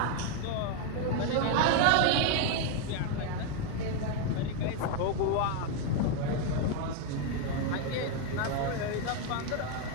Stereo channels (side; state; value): both; different; correlation 0.01